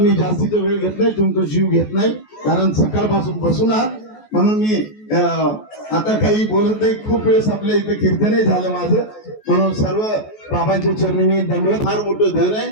जास्तीचा वेळ घेत नाही, तुमचा जीव घेत नाही, कारण सकाळपासून बसून आहात. म्हणून मी आता काही बोलत नाही. खूप वेळेस आपल्या इथे कीर्तनही झालं माझं. म्हणून सर्व बाबांच्या चरणी मी दंडवत. फार मोठं धन आहे.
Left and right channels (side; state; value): right; late; 14 ms